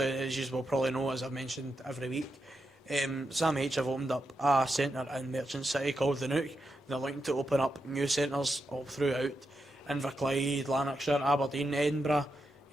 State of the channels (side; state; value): both; normal; correlation 0.86